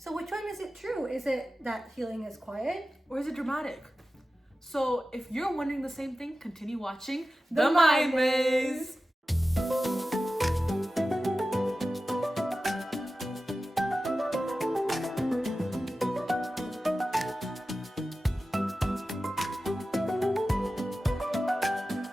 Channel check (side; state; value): both; normal; correlation 0.94